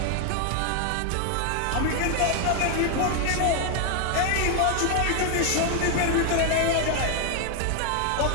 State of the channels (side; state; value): both; different; correlation 0.00